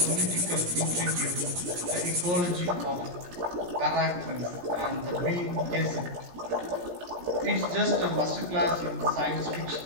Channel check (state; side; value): late; left; 17 ms